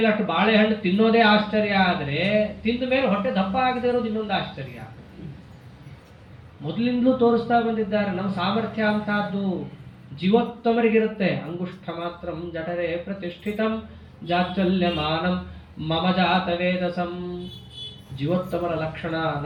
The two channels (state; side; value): identical; both; correlation 1.00